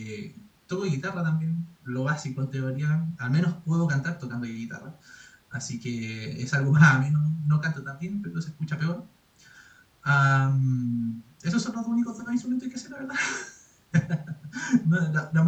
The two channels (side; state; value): both; identical; correlation 1.00